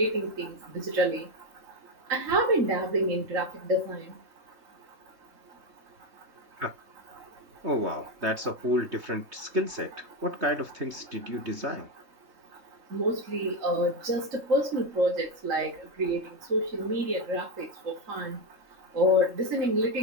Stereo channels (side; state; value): left; late; 3.2 ms